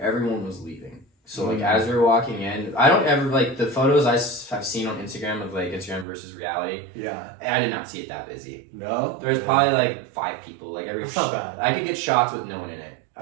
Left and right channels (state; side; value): drops out; left; at 6.1 s